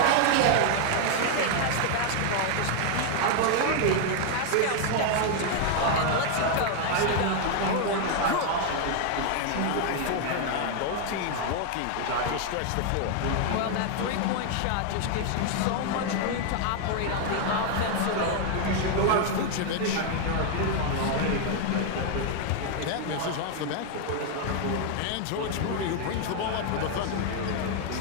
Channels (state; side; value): different; both; correlation 0.00